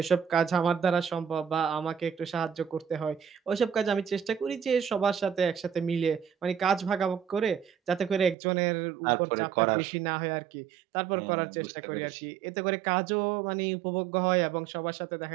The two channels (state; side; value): drops out; left; at 8.3 s